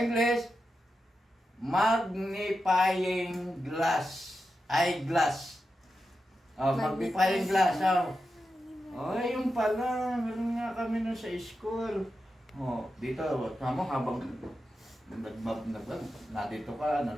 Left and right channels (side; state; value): both; normal; correlation 0.89